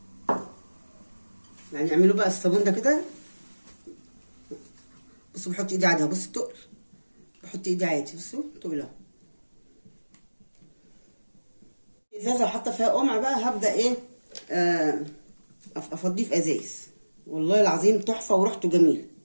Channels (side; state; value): both; inverted; correlation -1.00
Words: يعني اعملوا بقى الصابون ده كده. بصوا بحط ايدي عادي، بصوا التقل، بحط ايدي عادي، بصوا تقل اهو. ازازه وحاطه فيها قمع بقى، هبدا ايه افضيه في ازايز. والله العظيم تحفه وريحته جميل.